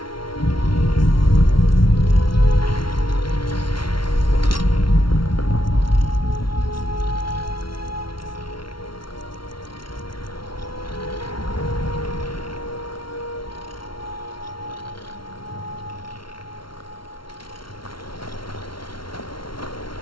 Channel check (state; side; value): late; right; 0.73 ms